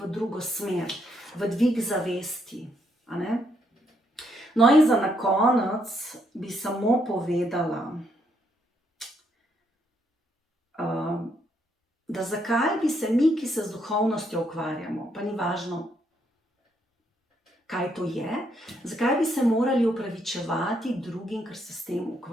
drugo smer, v dvig zavesti. A ne? No in za na konec bi samo povedala, da zakaj bi se mi, ki se z duhovnostjo ukvarjamo, pa ni važno, kaj to je, zakaj bi se morali opravičevati drugim, ker se s tem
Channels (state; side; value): normal; both; correlation 0.74